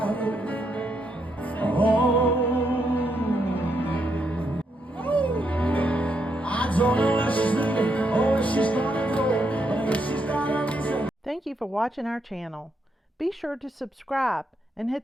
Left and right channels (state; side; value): normal; both; correlation 0.78